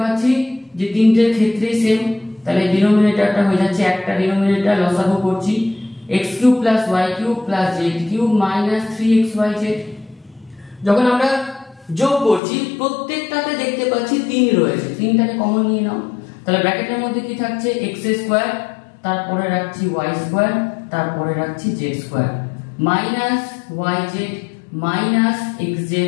পাচ্ছি যে তিনটের ক্ষেত্রে সেম, তাহলে ডিনোমিনেটরটা হয়ে যাচ্ছে একটা ডিনোমিনেটর লসাগু করছি x cube plus y cube plus z cube minus 3xyz। যখন আমরা যোগ করছি প্রত্যেকটাতে দেখতে পাচ্ছি 3 রয়েছে, 3টাকে কমন নিয়ে নাও, তাহলে ব্র্যাকেটের মধ্যে কি থাকছে x স্কয়ার, তারপরে রাখছি ওয়াই স্কোয়ার, তারপরে রাখছি z square, minus y z minus x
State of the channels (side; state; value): right; drops out; at 12.4 s